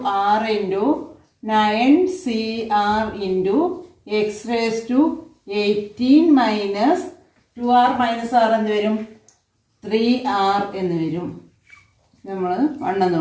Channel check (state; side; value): identical; both; correlation 1.00